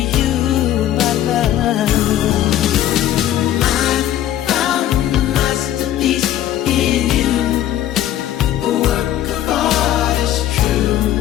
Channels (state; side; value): quieter; right; 12.2 dB